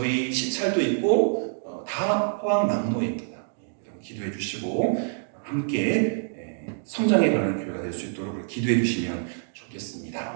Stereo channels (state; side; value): silent; left; digital silence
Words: 시찰도 있고 다 포항남로입니다. 기도해 주시고 함께 성장해가는 교회가 될 수 있도록 기도해 주시면